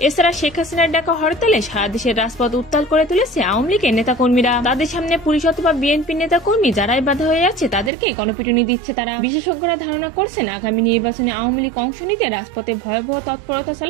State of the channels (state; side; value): drops out; left; at 7.9 s